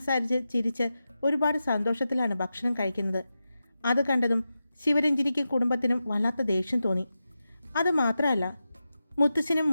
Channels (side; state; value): both; inverted; correlation -0.91